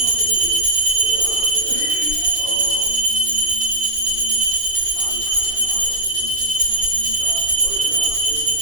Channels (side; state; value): left; late; 2.6 ms